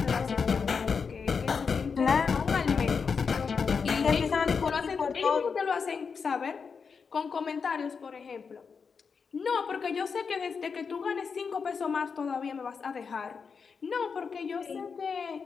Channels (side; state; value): right; quieter; 5.7 dB